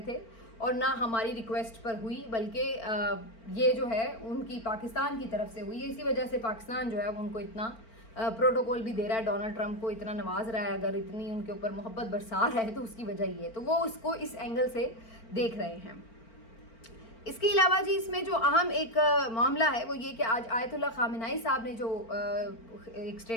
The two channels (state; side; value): late; right; 4.4 ms